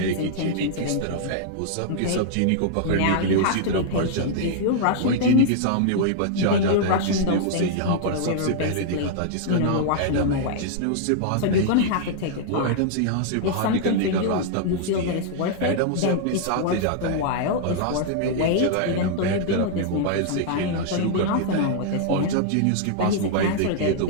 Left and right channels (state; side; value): different; both; correlation -0.01